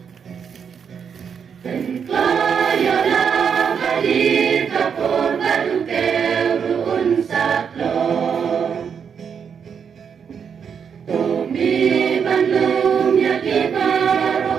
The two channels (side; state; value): left; quieter; 7.0 dB